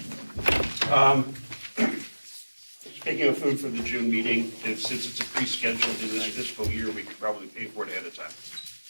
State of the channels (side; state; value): both; inverted; correlation -1.00